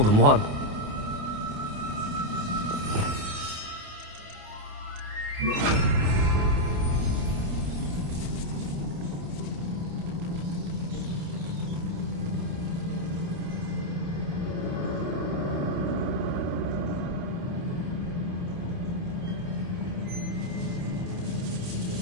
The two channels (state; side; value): late; left; 28 ms